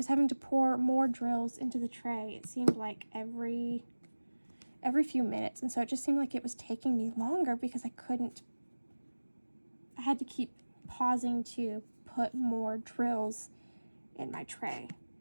having to pour more drills into the tray. It seemed like every few minutes, and so it just seemed like it was taking me longer because I had to keep pausing to put more drills in my tray.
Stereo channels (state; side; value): inverted; both; correlation -1.00